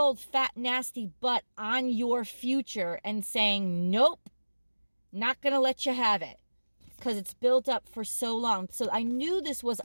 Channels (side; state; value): both; inverted; correlation -1.00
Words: fat nasty butt on your future and saying, nope. Not going to let you have it because it's built up for so long. So I knew this was